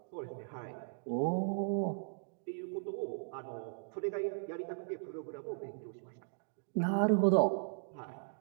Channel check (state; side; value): silent; left; digital silence